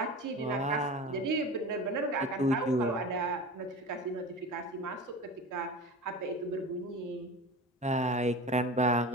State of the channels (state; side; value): normal; both; correlation 0.32